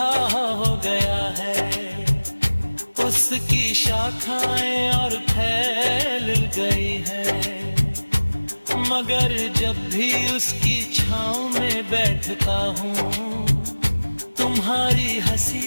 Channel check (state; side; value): inverted; both; correlation -1.00